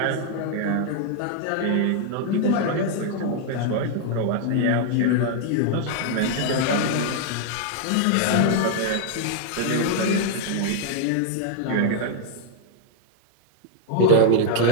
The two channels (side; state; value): both; different; correlation 0.00